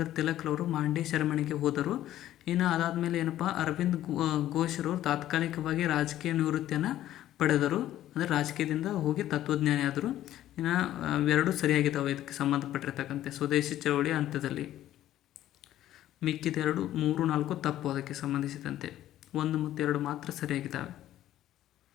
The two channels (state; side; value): quieter; right; 13.1 dB